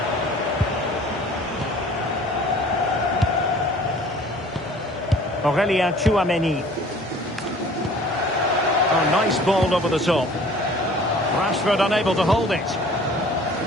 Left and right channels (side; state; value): both; normal; correlation 0.50